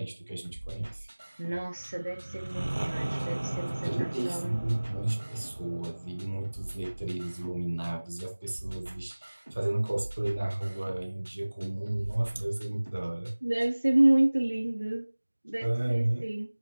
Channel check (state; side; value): inverted; both; correlation -1.00